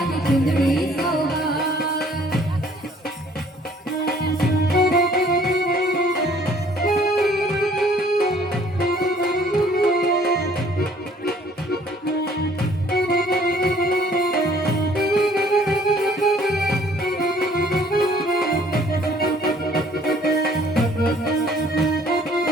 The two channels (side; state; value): both; normal; correlation 0.58